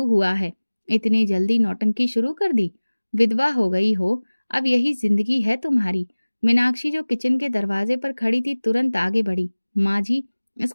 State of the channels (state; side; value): inverted; both; correlation -1.00